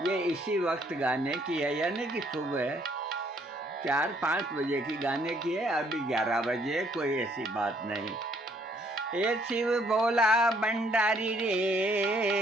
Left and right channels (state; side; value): normal; both; correlation 0.66